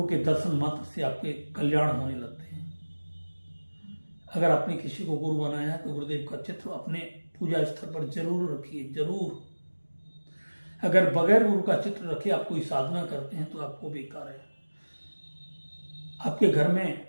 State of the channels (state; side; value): inverted; both; correlation -1.00